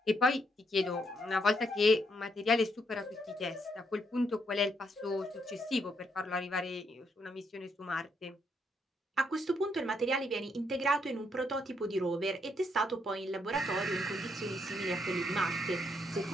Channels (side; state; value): both; normal; correlation 0.75